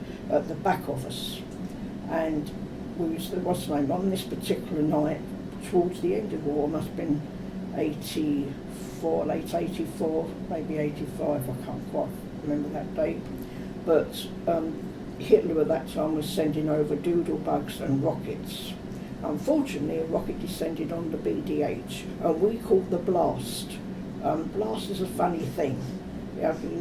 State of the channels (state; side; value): identical; both; correlation 1.00